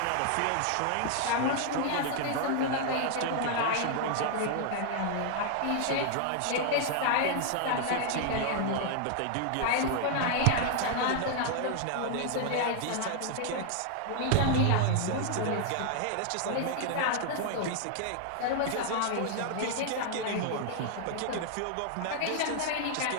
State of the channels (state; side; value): different; both; correlation 0.00